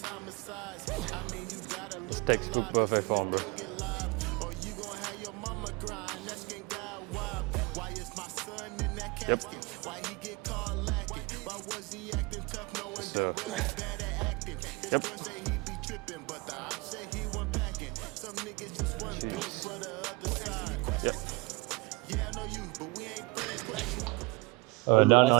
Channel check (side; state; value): left; quieter; 25.3 dB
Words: homicides. I mean, you gotta look Textbook perfect form, bro. or you gon' have your mama grind, asking God why. Why is my son in that Yep. casket? Why he get caught lacking? Why was he acting tough knowing So- that well he's bad at acting? His Yep. friends say he be tripping, but the op say he wasn't packing. Some niggas just wasn't built for the other side. Yep. Yeah, I know you, but we ain't friends. Done I'll on